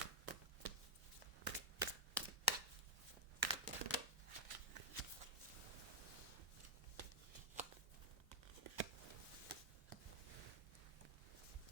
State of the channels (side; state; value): both; normal; correlation -0.04